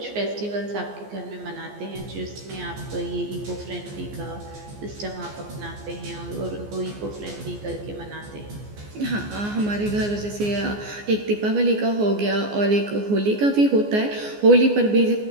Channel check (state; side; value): late; left; 14 ms